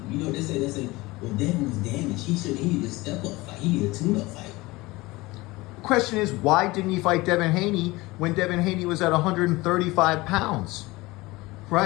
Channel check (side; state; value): right; quieter; 21.2 dB